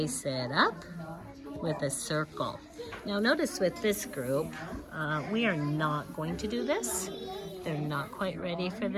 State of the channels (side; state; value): both; identical; correlation 1.00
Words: it up with a circle. Now notice with this group, we are not going to do this. They're not quite ready for